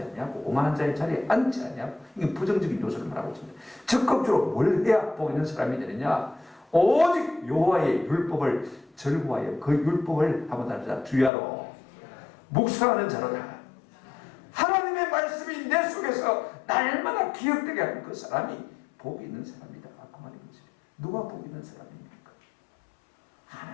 아니하고 오만한 자의 자리에 앉지 아니하고 이게 부정적인 요소를 말하고 있습니다. 적극적으로 뭘 해야 복 있는 사람이 되느냐? 오직 여호와의 율법을 절구하여 그 율법을 한번 다르자 주야로 묵상하는 자로다. 하나님의 말씀이 내 속에서 날마다 기억되게 하는 그 사람이 복이 있는 사람이다. 그 말인 것입니다. 누가 복 있는 사람입니까?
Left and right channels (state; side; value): drops out; right; at 11.3 s